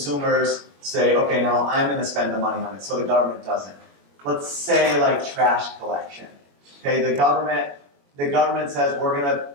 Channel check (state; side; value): late; left; 21 ms